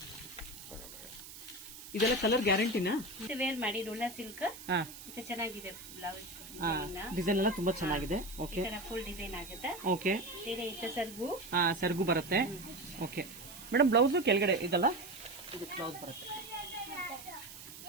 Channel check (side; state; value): right; noise; hiss, 14 dB below the sound